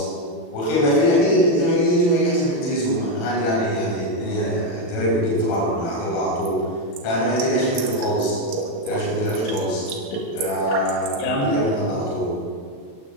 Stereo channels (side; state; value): right; late; 36 ms